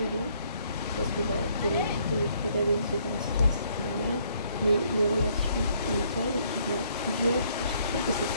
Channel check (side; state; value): both; inverted; correlation -0.67